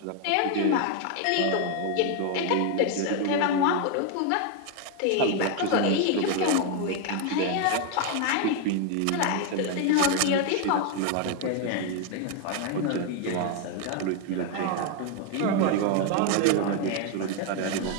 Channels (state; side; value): different; both; correlation 0.01